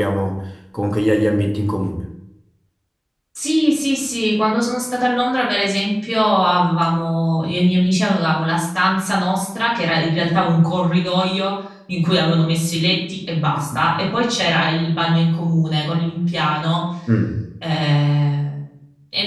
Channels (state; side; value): identical; both; correlation 1.00